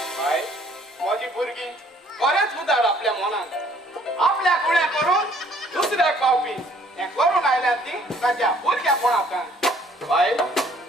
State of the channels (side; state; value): both; normal; correlation 0.60